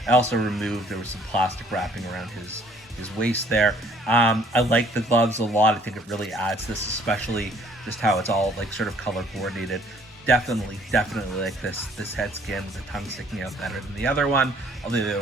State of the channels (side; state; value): both; normal; correlation 0.59